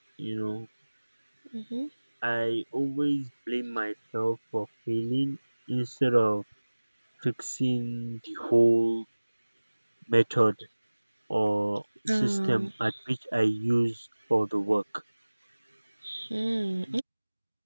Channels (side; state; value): both; inverted; correlation -1.00